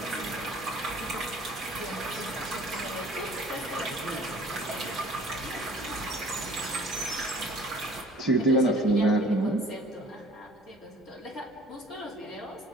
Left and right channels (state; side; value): normal; both; correlation 0.50